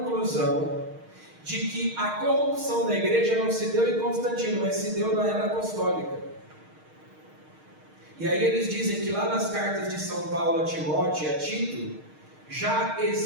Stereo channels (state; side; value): late; left; 6.5 ms